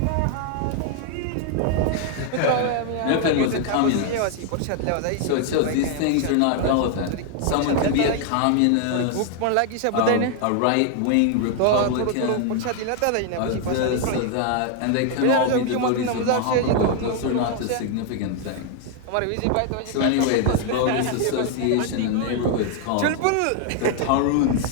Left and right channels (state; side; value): different; both; correlation 0.00